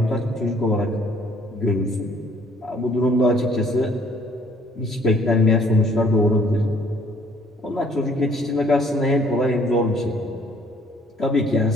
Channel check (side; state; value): both; normal; correlation 0.60